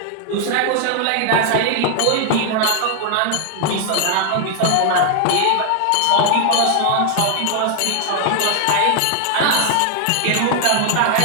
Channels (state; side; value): different; both; correlation 0.00